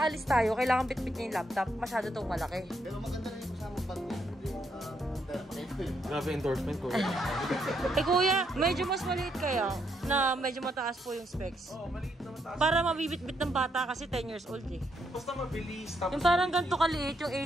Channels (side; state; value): both; normal; correlation 0.76